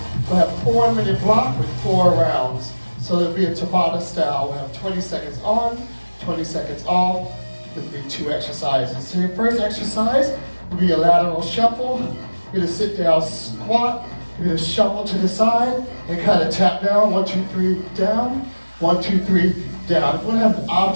We'll have 4 minute block with 4 rounds. So it'll be a Tabata style. We'll have 20 seconds on, 20 seconds off. It'll be 2 exercises. So your first exercise will be a lateral shuffle. You're going to sit down, squat. You're going to shuffle to the side and kind of tap down. 1, 2, 3, down. 1, 2, 3, down. If you want to have an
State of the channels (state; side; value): inverted; both; correlation -1.00